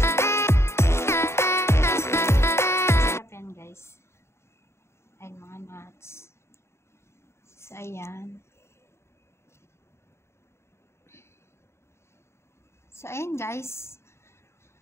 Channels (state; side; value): late; right; 0.13 ms